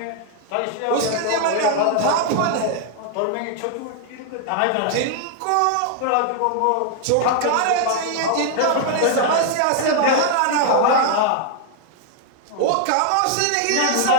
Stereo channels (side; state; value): both; different; correlation 0.00